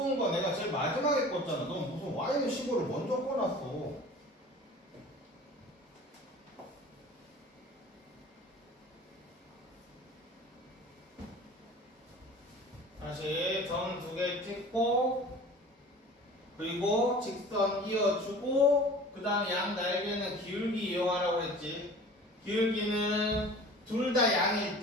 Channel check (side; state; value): both; normal; correlation 0.43